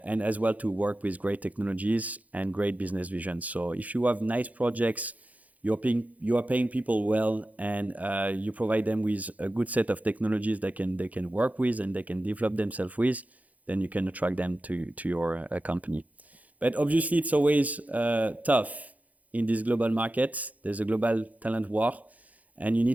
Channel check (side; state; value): left; late; 0.075 ms